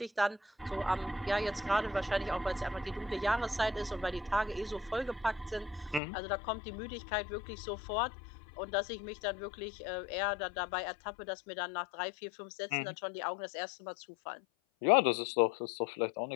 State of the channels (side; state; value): right; drops out; at 6.0 s